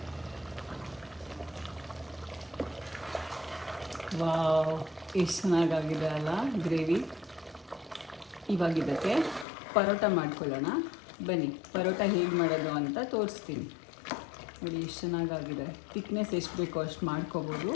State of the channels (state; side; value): drops out; right; at 9.5 s